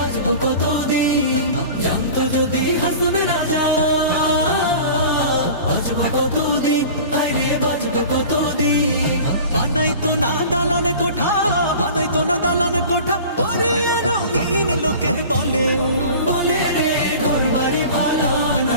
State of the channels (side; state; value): both; inverted; correlation -0.39